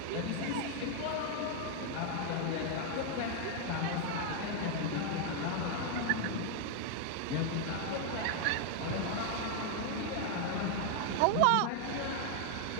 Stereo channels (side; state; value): both; different; correlation 0.00